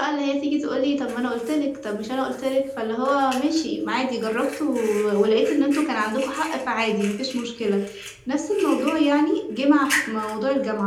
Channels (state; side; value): identical; both; correlation 1.00